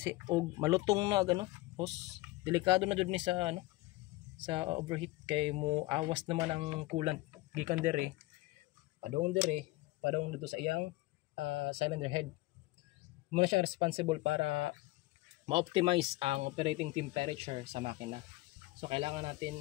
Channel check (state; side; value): quieter; right; 19.4 dB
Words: og malutong na gano hose. Delikado na jud ni sa ano sa overheat kay mo awas naman ang coolant gikan dire padong dito sa iyang cylinder head. Muna siya responsible para ma-optimize ang operating temperature sa makina. So kailangan natin